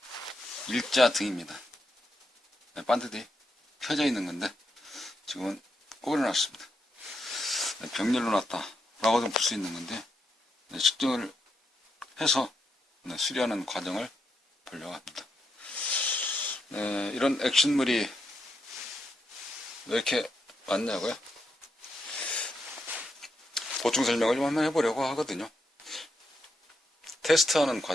일자 등입니다. 네, 반드시 켜져 있는 건데, 지금은 꼬려놨습니다. 네, 병렬로 놨다. 라고도 볼 수 있는 건데, 네, 측정을 해서 네, 수리하는 과정을 보려고 합니다. 네, 이런 액션물이 왜 이렇게 많냐고요? 보충 설명을 좀 한번 해보려고 하거든요. 테스트하는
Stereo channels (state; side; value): normal; both; correlation 0.82